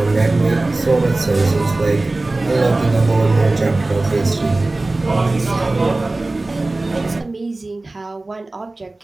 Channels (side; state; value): left; quieter; 3.0 dB